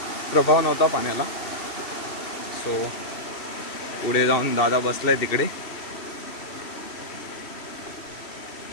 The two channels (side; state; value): right; late; 2.7 ms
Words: प्रभाव नव्हता पाण्याला. सो पुढे जाऊन दादा बसलाय तिकडे.